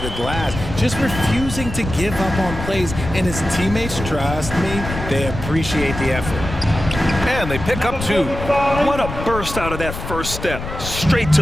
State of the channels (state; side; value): noise; left; rumble, 8 dB below the sound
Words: the glass? Just refusing to give up on plays, and his teammates, trust me, they appreciate the effort. And they pick up 2. What a burst out of that first step. Straight